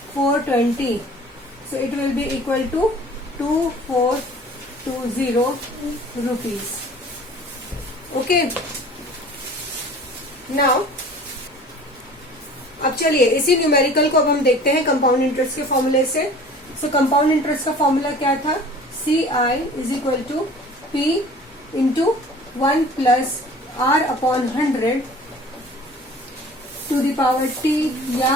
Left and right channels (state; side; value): normal; both; correlation 0.46